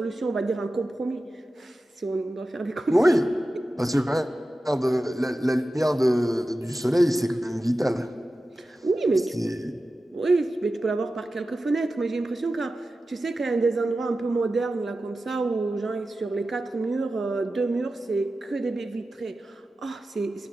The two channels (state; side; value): normal; both; correlation 0.94